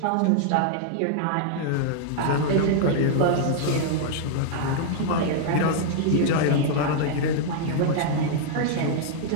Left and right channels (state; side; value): different; both; correlation -0.01